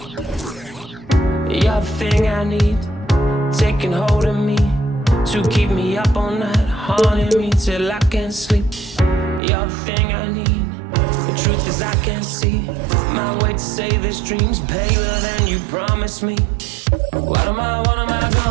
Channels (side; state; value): left; drops out; at 9.4 s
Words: You're the thing I need, taking hold of me, to keep me up all night, haunting me till I can't sleep. You're the thing I need, the truth is I can't see my way to save this dream's paler than you promised me. What am I